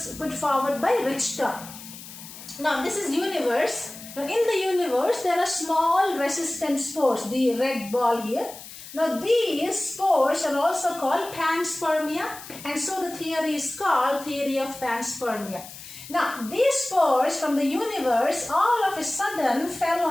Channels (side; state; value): left; noise; hiss, 15 dB below the sound